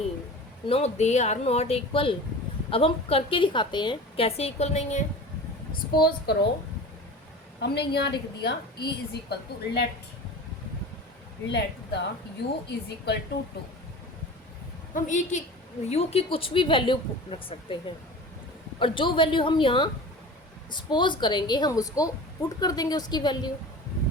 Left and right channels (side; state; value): both; normal; correlation 0.36